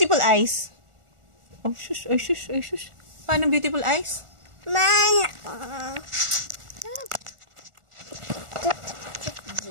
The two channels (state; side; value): late; left; 1.4 ms